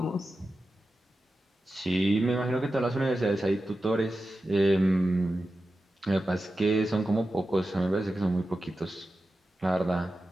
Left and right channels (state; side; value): normal; both; correlation 0.92